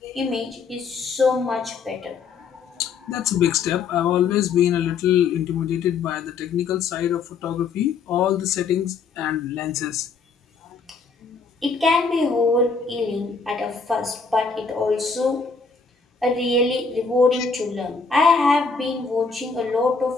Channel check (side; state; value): right; quieter; 5.0 dB